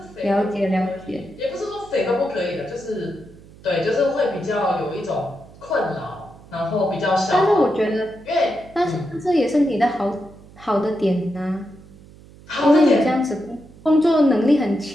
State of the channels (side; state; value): right; noise; hum, 22 dB below the sound